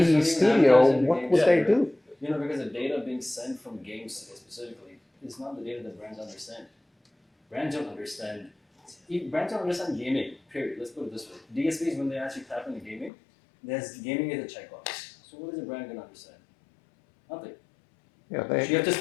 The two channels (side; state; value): right; drops out; at 13.1 s